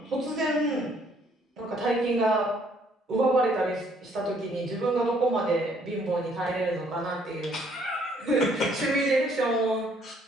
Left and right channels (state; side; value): normal; both; correlation 0.65